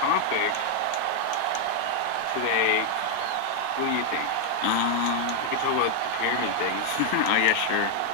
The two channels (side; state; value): both; different; correlation 0.00